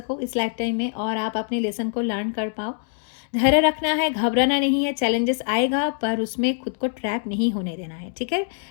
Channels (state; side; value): silent; right; 63 dB below the other